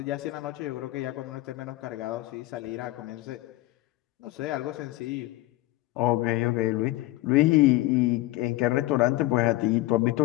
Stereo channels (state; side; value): quieter; right; 17.6 dB